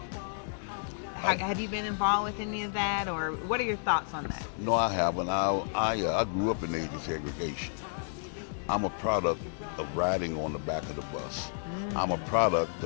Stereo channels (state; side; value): silent; right; 57 dB below the other